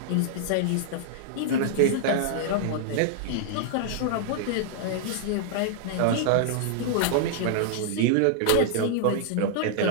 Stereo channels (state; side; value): different; both; correlation -0.01